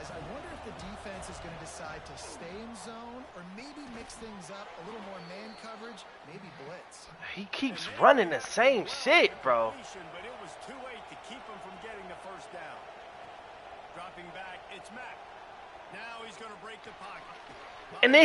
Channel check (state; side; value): identical; both; correlation 1.00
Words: I wonder if the defense is going to decide to stay in zone or maybe mix things up, a little more man coverage, maybe blitz. He keeps running the same shit, bro. But it was too late to keep him from getting the first down. Dropping back, it's Mack. Now he's going to break the pocket. And